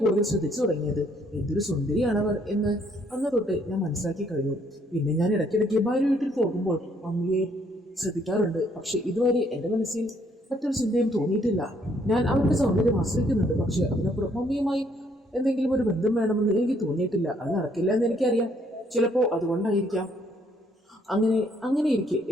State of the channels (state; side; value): normal; both; correlation 0.67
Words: കൂടുതൽ ശ്രദ്ധിച്ചു തുടങ്ങിയത്. എന്തൊരു സുന്ദരിയാണവർ എന്ന് അന്ന് തൊട്ട് ഞാൻ മനസ്സിലാക്കി കഴിഞ്ഞു. പിന്നെ ഞാൻ ഇടയ്ക്കിടയ്ക്ക് ഭാര്യ വീട്ടിൽ പോകുമ്പോൾ മമ്മിയെ ശ്രദ്ധിക്കാറുണ്ട്. പക്ഷെ ഇതുവരെ എൻ്റെ മനസ്സിൽ മറ്റൊരു ചിന്തയും തോന്നിയിട്ടില്ല. ഞാൻ അവരുടെ സൗന്ദര്യം ആശ്രയിക്കുന്നുണ്ട്. പക്ഷെ അതിനപ്പുറം മമ്മിയുമായി എന്തെങ്കിലും ഒരു ബന്ധം വേണമെന്ന് എനിക്ക് തോന്നിയിട്ടില്ല. അത് നടക്കില്ല എന്ന് എനിക്കറിയാം. ചിലപ്പോൾ അതുകൊണ്ടായിരിക്കാം. അങ്ങനെ ഇരിക്കെ